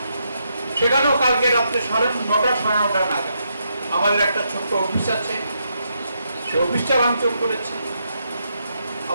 সেখানেও কালকে রাত্রে 9:30 সাড়ে 9টা নাগাদ আমাদের একটা ছোট্ট অফিস আছে, সে অফিসটা ভাঙচুর করেছে।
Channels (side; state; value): both; inverted; correlation -0.80